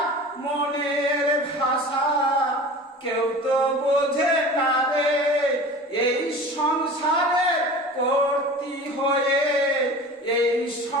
মনের ভাষা কেউ তো বোঝে না রে। এই সংসারে কর্তি হয়ে, এই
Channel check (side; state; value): both; normal; correlation 0.37